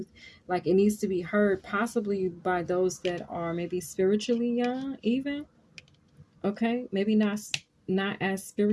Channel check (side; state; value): both; identical; correlation 1.00